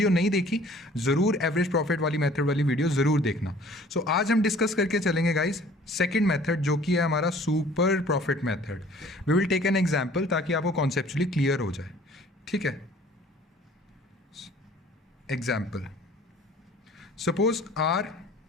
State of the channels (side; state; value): both; normal; correlation 0.52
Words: नहीं देखी ज़रूर एवरेज प्रॉफिट वाली मेथड वाली वीडियो ज़रूर देखना. सो आज हम डिस्कस करके चलेंगे गाइस सेकेंड मेथड जो कि है हमारा super profit method. We will take an example ताकि आपको कॉन्सेप्चुअली क्लियर हो जाए. ठीक है, एग्जाम्पल सपोज आर